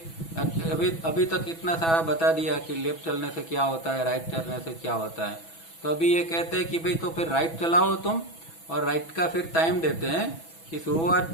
अभी तक इतना सारा बता दिया कि लेफ्ट चलने से क्या होता है, राइट चलने से क्या होता है. तो अभी ये कहते हैं कि भाई तो फिर राइट चलाओ तुम, और राइट का फिर टाइम देते हैं कि शुरुआत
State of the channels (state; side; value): late; right; 6.1 ms